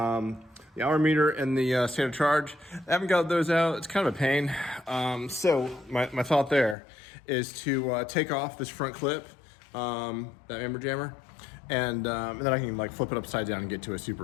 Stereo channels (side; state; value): right; drops out; at 6.8 s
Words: hour meter and the state of charge. I haven't got those out. It's kind of a pain. So my thought there is to take off this front clip, that amber jammer, and then I can flip it upside down and get to it